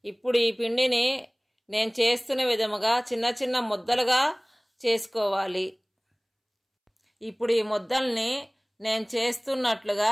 ఇప్పుడు ఈ పిండిని నేను చేస్తున్న విధముగా చిన్న చిన్న ముద్దలుగా చేసుకోవాలి. ఇప్పుడు ఈ ముద్దల్ని నేను చేస్తున్నట్లుగా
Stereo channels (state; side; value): identical; both; correlation 1.00